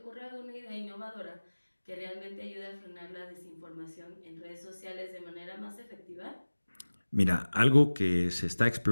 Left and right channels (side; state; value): both; inverted; correlation -1.00